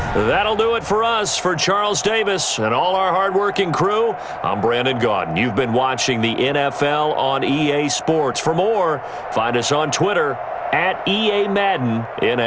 That'll do it for us. For Charles Davis and all our hardworking crew, I'm Brandon Gaudin. You've been watching the NFL on EA Sports. For more, find us on Twitter @EA Madden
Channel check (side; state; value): both; identical; correlation 1.00